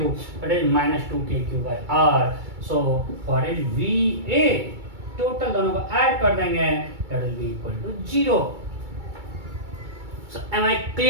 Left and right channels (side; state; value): left; late; 2.3 ms